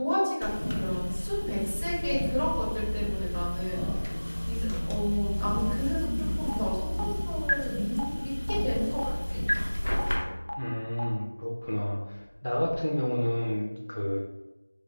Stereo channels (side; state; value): both; inverted; correlation -1.00